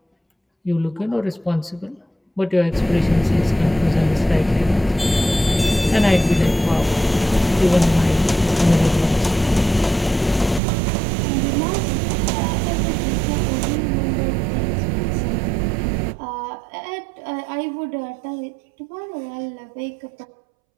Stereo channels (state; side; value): drops out; left; at 10.6 s